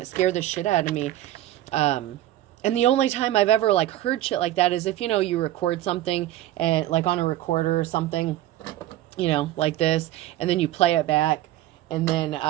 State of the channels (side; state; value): left; quieter; 14.3 dB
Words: it scared the shit out of me. And the only time I've ever, like, heard shit like that is if, you know, you record something, and like on a recorder or something, you know, like this, and then you play it back, and then